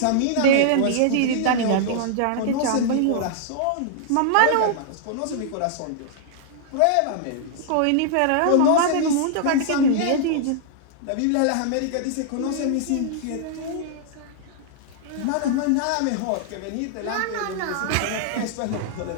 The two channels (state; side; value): different; both; correlation -0.01